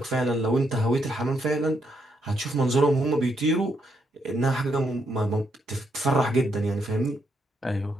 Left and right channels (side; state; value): both; normal; correlation 0.77